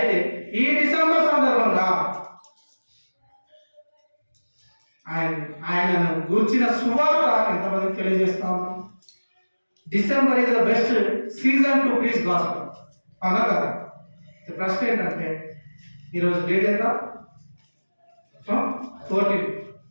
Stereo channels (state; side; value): inverted; both; correlation -1.00